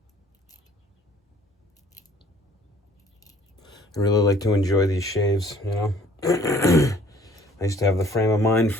I really like to enjoy these shaves, you know. I used to have the frame of mind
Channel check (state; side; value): normal; both; correlation 0.56